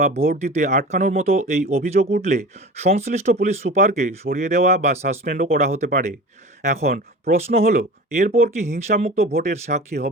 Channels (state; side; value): normal; both; correlation 0.35